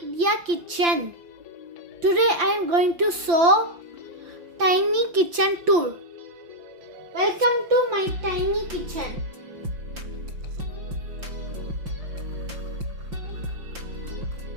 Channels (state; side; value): late; left; 5.9 ms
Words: Today I am going to show tiny kitchen tour. Welcome to my tiny kitchen.